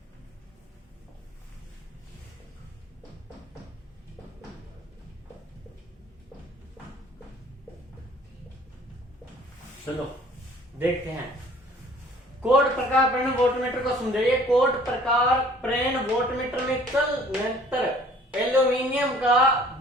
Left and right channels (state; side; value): normal; both; correlation 0.54